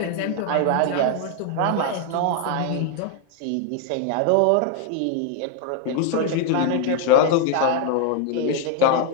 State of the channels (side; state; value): both; different; correlation 0.00